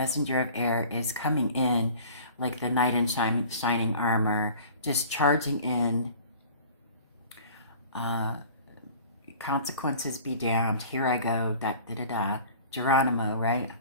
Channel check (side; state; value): both; inverted; correlation -0.45